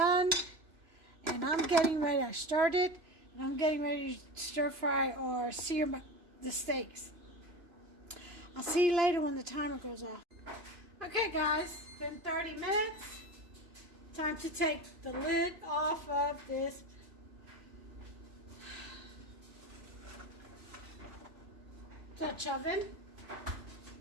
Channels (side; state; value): left; late; 2.9 ms